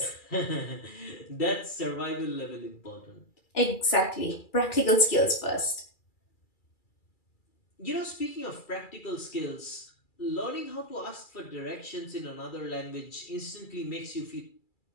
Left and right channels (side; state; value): right; late; 2.3 ms